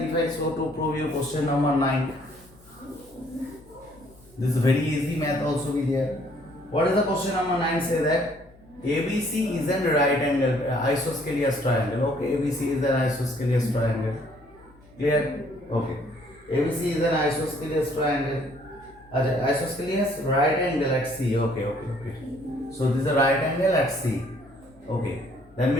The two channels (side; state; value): left; noise; hum, 27 dB below the sound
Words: I so to prove you question number 9. This is very easy math also be there. What is the question number 9? Say that ABC is a right angle isosceles triangle. Okay, ABC is an isosceles triangle. Clear? Okay. ABC is an isosceles triangle. Isosceles right angle at C. Okay. So this is a right angle at C. Okay. That